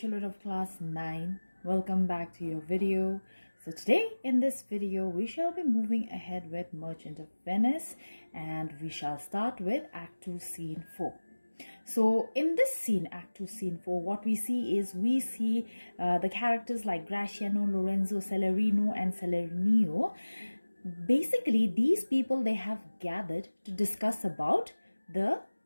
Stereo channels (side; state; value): both; inverted; correlation -1.00